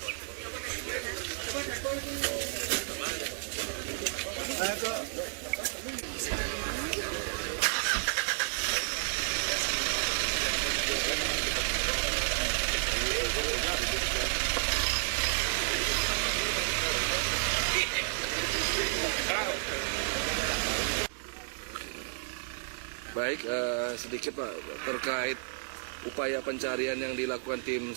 Ayo tuh. Baik, sedikit Pak terkait upaya pencarian yang dilakukan tim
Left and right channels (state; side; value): silent; left; digital silence